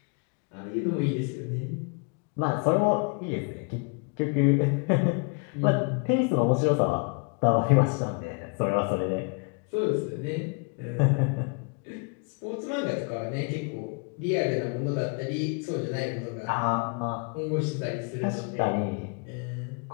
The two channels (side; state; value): right; quieter; 35.9 dB